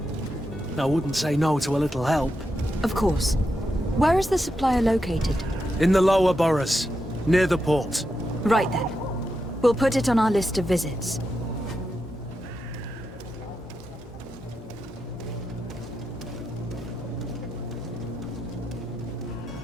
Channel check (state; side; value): normal; both; correlation 0.86